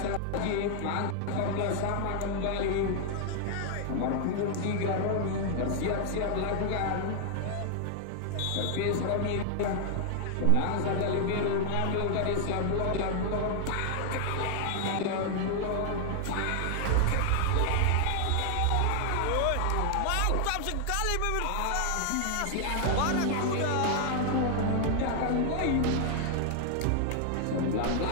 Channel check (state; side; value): different; both; correlation 0.00